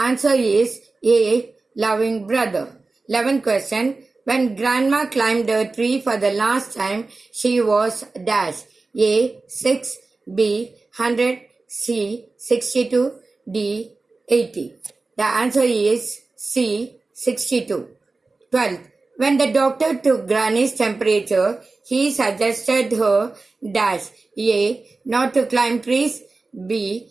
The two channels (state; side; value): quieter; left; 3.6 dB